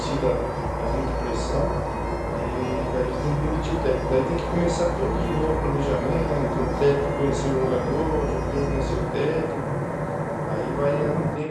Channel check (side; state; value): both; identical; correlation 1.00